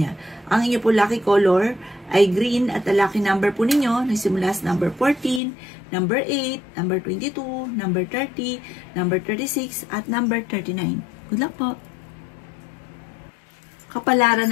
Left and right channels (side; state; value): right; drops out; at 5.4 s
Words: Ang inyo po lucky color ay green at ang lucky number po ninyo nagsimula sa number 14, number 8, number 22, number 30, number 36, at number 39. Good luck po!